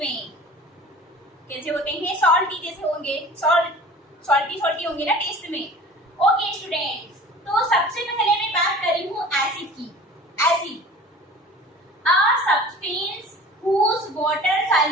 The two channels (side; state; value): both; normal; correlation 0.43